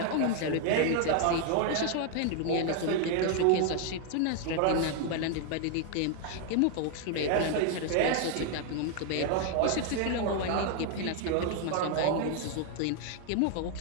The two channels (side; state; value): both; different; correlation 0.00